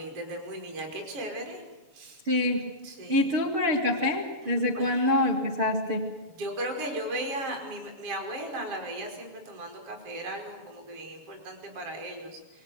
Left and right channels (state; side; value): late; left; 6.9 ms